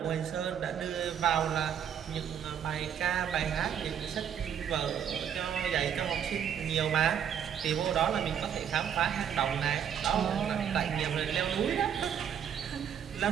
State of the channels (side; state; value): left; quieter; 8.6 dB